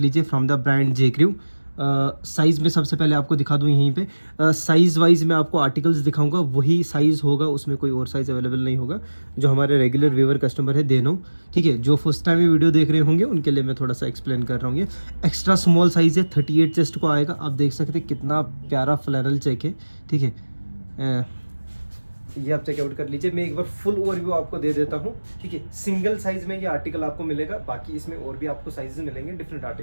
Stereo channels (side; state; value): both; inverted; correlation -1.00